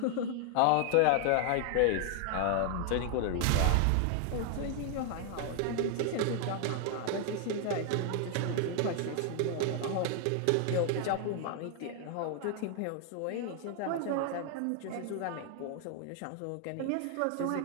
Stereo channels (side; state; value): both; different; correlation 0.00